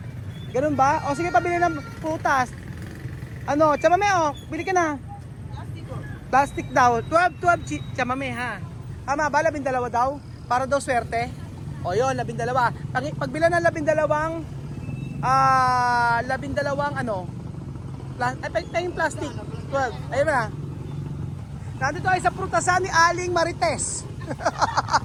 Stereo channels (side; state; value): both; identical; correlation 1.00